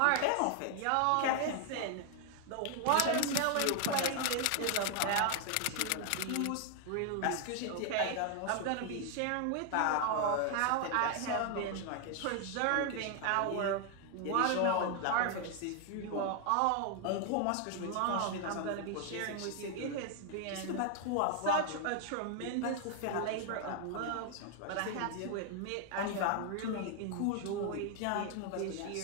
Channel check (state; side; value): different; both; correlation 0.00